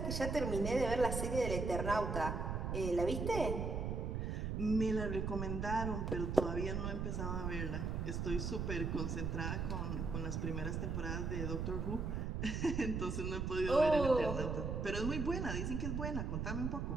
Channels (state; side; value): noise; right; rumble, 1 dB below the sound